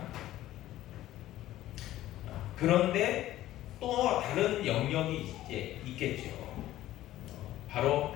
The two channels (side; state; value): right; quieter; 14.4 dB